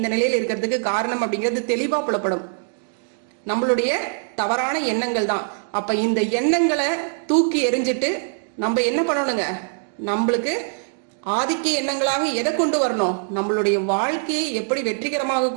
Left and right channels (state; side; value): silent; left; digital silence